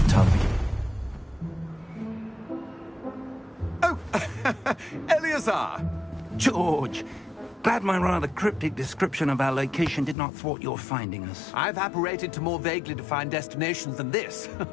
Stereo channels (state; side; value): drops out; right; at 10.2 s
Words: term begins. Oh, Eleazar! George! Glad my rather cryptic description of our location did not thwart your finding us. I've apparated to more vaguely defined destinations than this.